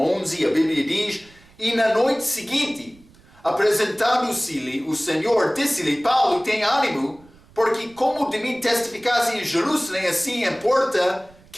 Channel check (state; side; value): noise; right; rumble, 27 dB below the sound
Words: a Bíblia diz, e na noite seguinte, apresentando-se-lhe o Senhor, disse-lhe, Paulo, tem ânimo, porque como de mim testificaste em Jerusalém, assim importa